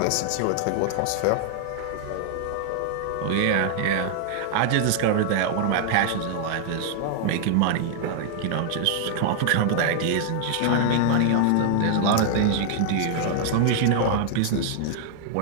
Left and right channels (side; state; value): both; different; correlation 0.00